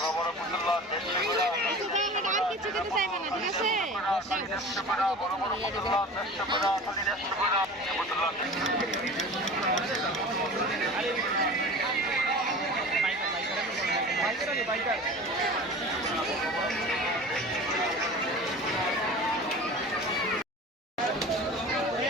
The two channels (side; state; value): both; normal; correlation 0.37